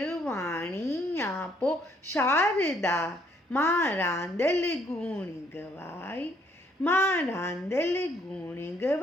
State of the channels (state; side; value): normal; both; correlation 0.67